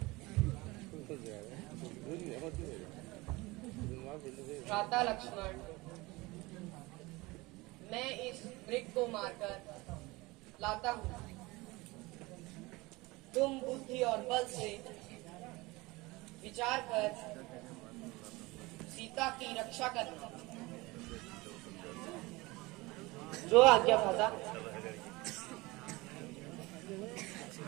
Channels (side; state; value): left; quieter; 22.4 dB